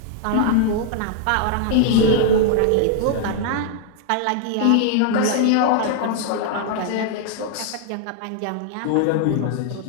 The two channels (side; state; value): both; different; correlation 0.00